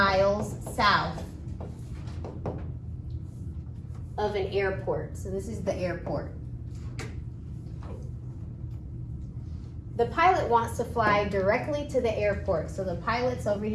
south of an airport. So this is the airport. The pilot wants to fly directly to the airport. So the pilot's over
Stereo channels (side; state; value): both; identical; correlation 1.00